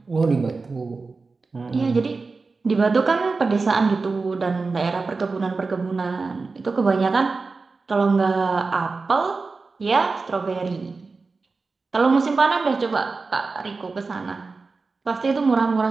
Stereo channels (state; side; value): quieter; left; 4.1 dB